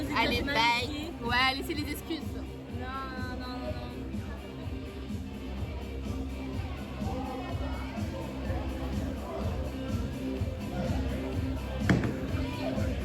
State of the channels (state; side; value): identical; both; correlation 1.00